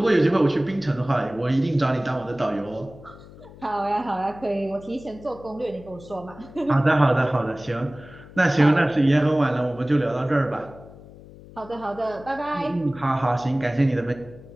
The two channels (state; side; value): noise; left; hum, 19 dB below the sound